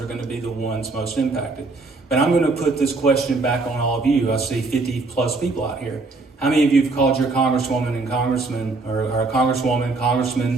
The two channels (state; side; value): quieter; left; 3.7 dB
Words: are going to be the ones most impacted. But I'm going to put this question back on all of you. I see 50 plus people out here. How many of you have called your congresswoman and congressman, or a congresswoman,